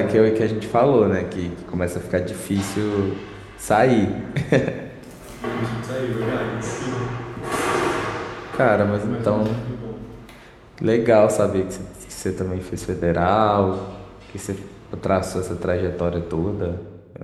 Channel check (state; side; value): identical; both; correlation 1.00